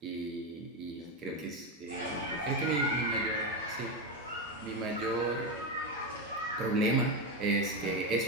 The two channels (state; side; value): normal; both; correlation 0.11